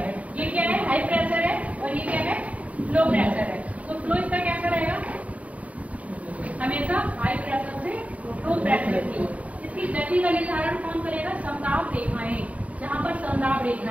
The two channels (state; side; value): late; left; 0.068 ms